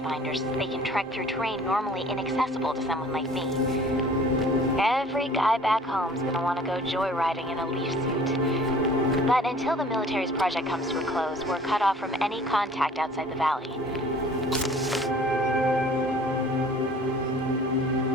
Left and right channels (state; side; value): normal; both; correlation 0.50